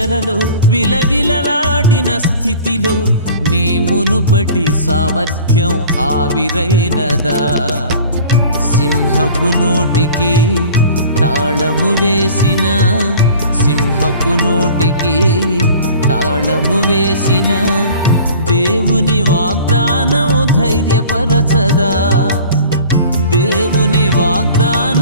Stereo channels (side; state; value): both; inverted; correlation -0.44